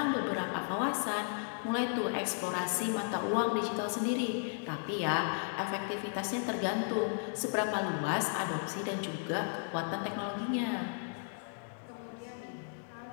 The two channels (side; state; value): right; silent; digital silence